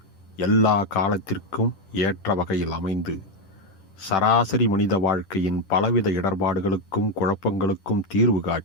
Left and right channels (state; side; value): late; right; 10 ms